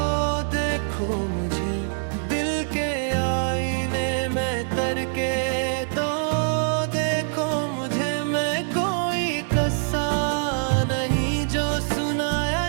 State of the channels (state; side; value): silent; left; digital silence